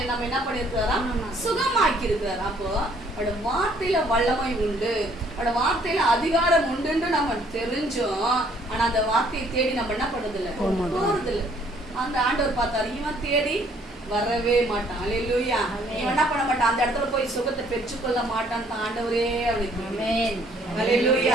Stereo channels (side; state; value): both; normal; correlation 0.63